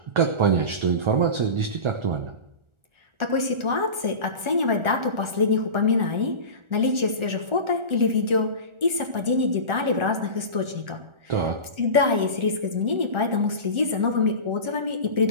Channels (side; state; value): left; late; 1.4 ms